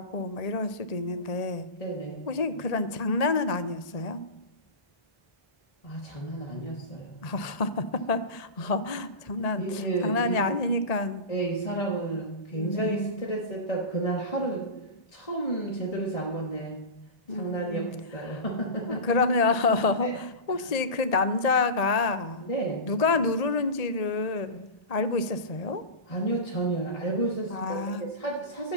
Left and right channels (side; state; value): right; late; 1.8 ms